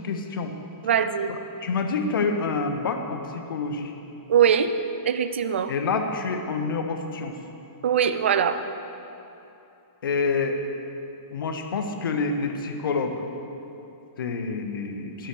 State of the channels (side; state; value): both; inverted; correlation -0.34